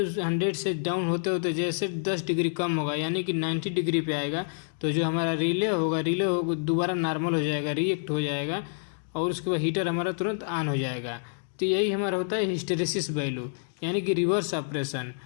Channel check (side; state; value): right; silent; digital silence